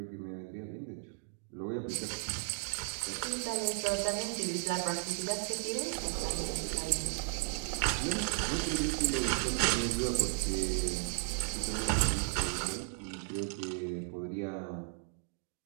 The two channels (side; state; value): left; silent; 54 dB below the other